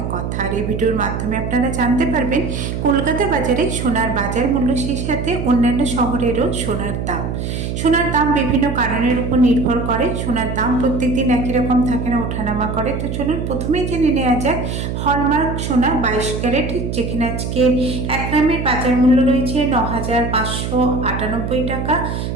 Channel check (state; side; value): noise; right; hum, 4 dB below the sound